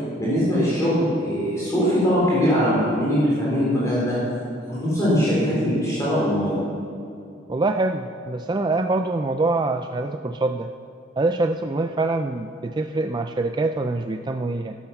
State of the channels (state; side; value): normal; both; correlation 0.59